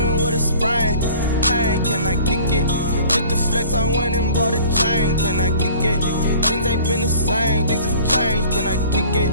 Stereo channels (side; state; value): both; inverted; correlation -0.48